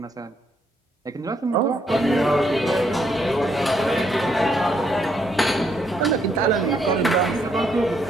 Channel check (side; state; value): both; normal; correlation 0.74